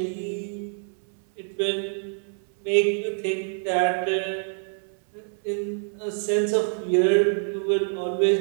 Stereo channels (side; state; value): left; silent; 61 dB below the other